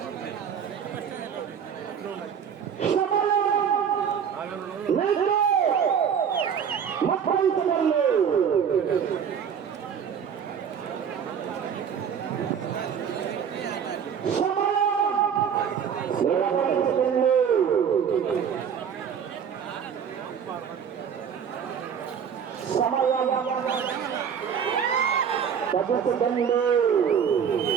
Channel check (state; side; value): quieter; left; 7.7 dB